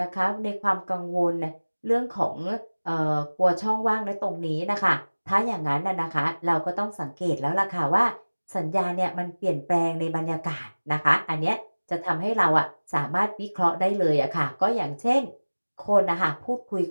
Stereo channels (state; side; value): inverted; both; correlation -1.00